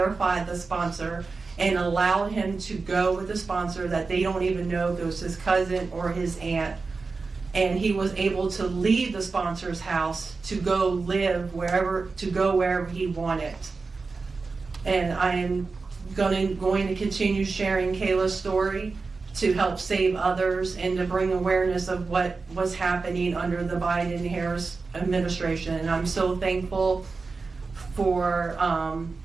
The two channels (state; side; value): quieter; left; 4.2 dB